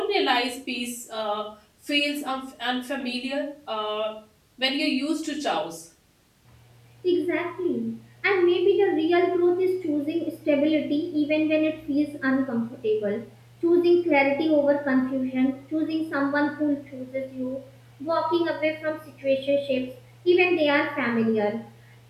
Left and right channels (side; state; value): both; identical; correlation 1.00